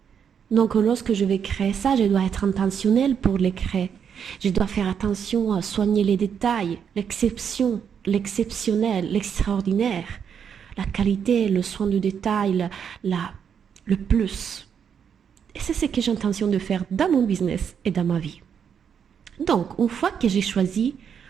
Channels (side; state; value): left; quieter; 7.6 dB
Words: Donc lorsque je vais créer ça, je dois être intentionnel pour le créer. Je dois faire attention à soigner les détails, l'exception, l'exceptionnel, l'extraordinaire, la qualité, le soin du détail, le plus. Et c'est ce que j'ai intention de faire dans mon business et dans ma vie. Donc, une fois que j'ai choisi